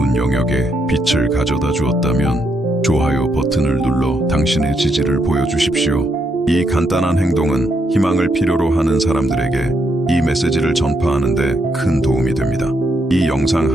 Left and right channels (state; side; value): normal; both; correlation 0.78